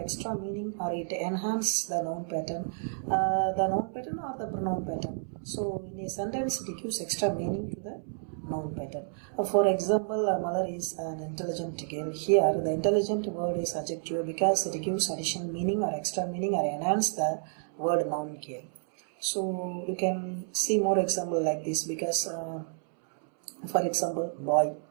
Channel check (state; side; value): silent; left; 58 dB below the other